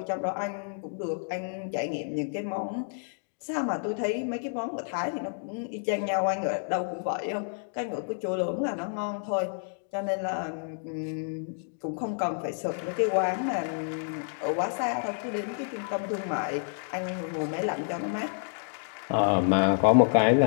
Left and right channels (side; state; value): right; silent; digital silence